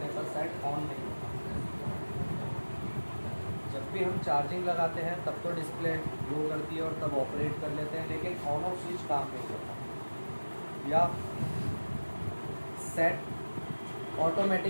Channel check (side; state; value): both; inverted; correlation -1.00